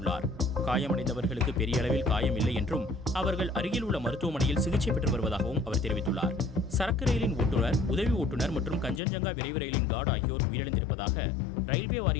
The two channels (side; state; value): right; drops out; at 9.0 s